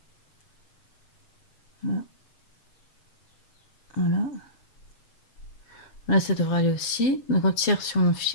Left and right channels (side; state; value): right; late; 7.4 ms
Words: Voilà. Voilà. Là, ça devrait aller aussi. Donc on tire sur